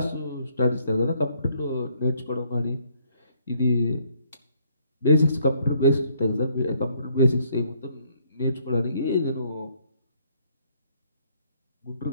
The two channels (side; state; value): both; inverted; correlation -0.67